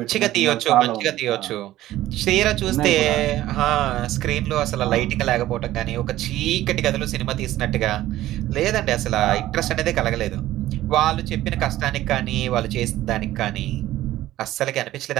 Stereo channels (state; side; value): quieter; left; 14.8 dB